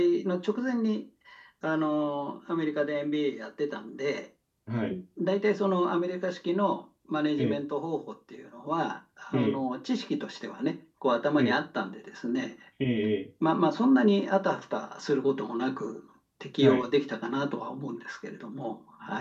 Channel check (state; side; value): identical; both; correlation 1.00